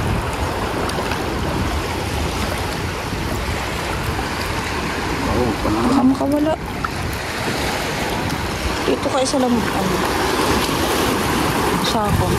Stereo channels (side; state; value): both; identical; correlation 1.00